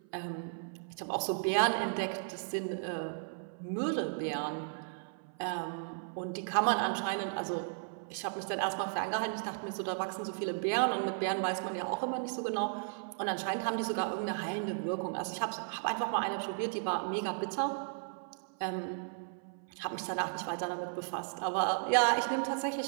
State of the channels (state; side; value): silent; left; 54 dB below the other